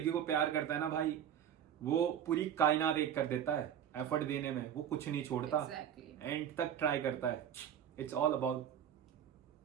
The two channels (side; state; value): left; quieter; 9.4 dB